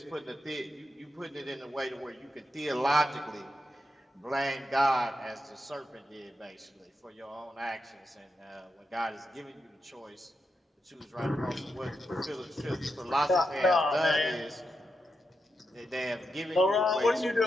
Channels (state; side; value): normal; both; correlation 0.86